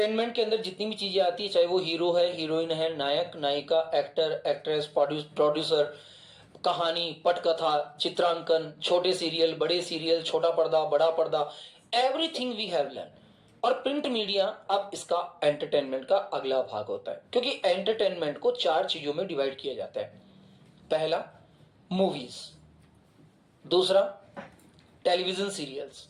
के अंदर जितनी भी चीजें आती है, चाहे वो हीरो है, हीरोइन है, नायक नायिका, एक्टर एक्ट्रेस, प्रोड्यूसर, कहानी, पटकथा, चित्रांकन, छोटे सीरियल, बड़े सीरियल, छोटा पर्दा, बड़ा पर्दा, एवरीथिंग वी हैव लर्न। और प्रिंट मीडिया अब इसका एंटरटेनमेंट का अगला भाग होता है, क्योंकि एंटरटेनमेंट को 4 चीजों में डिवाइड किया जाता है। पहला, मूवीज। दूसरा, टेलीविजन सीरियल्स।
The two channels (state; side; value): identical; both; correlation 1.00